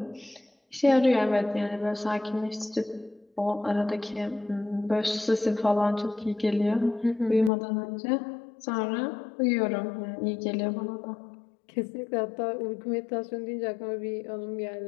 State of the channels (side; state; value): right; drops out; at 7.5 s